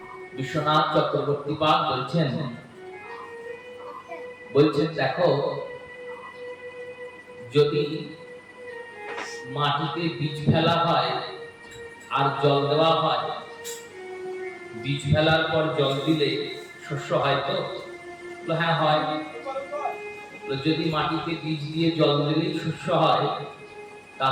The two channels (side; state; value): both; identical; correlation 1.00